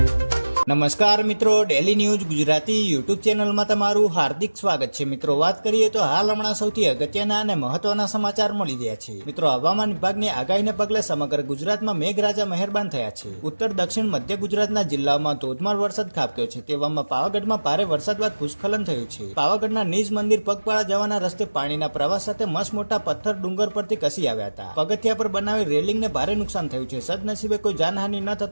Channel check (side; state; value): both; inverted; correlation -1.00